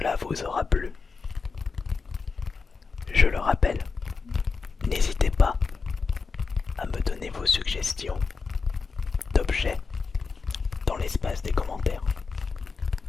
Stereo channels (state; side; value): quieter; right; 4.8 dB